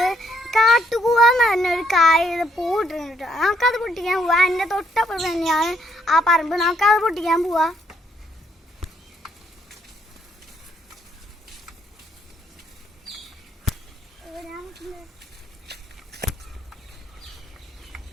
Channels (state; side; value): normal; both; correlation 0.71